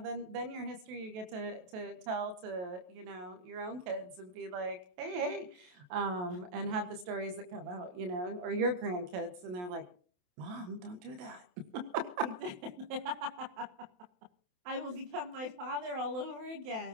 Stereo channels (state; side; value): late; left; 28 ms